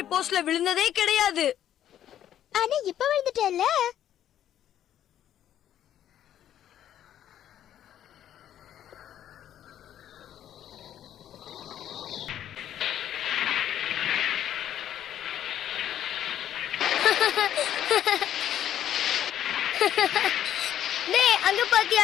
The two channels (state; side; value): quieter; right; 11.0 dB